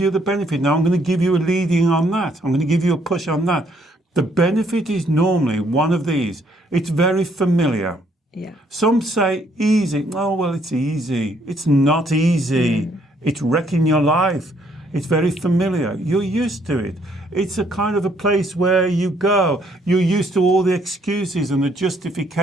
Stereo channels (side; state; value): both; normal; correlation 0.68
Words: the benefit. Now I'm going to give you a leading on that. I'm going to give you a push on that. The benefit is normally one of these. It's very familiar. Yeah. Some say easy. Oh, well, it's easy. It's not easy. It's wrecking your life. It's very familiar. You're used to it. It's a kind of a place where you go. You're used to all the excuses and the